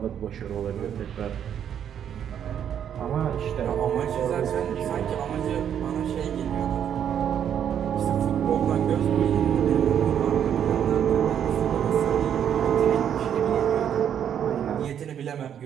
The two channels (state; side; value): quieter; left; 9.1 dB